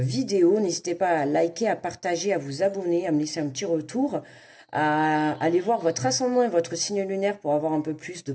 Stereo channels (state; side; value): identical; both; correlation 1.00